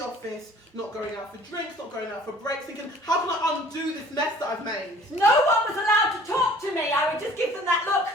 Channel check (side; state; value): both; normal; correlation 0.51